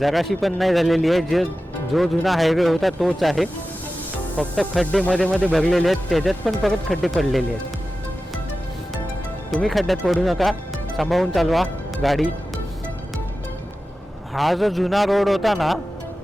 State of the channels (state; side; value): normal; both; correlation 0.94